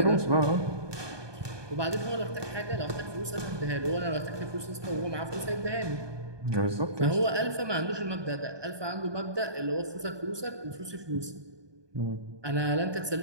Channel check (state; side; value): late; left; 1.2 ms